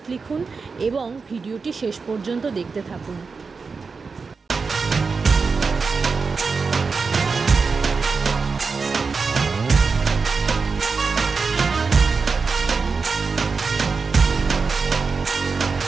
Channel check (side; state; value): left; quieter; 4.8 dB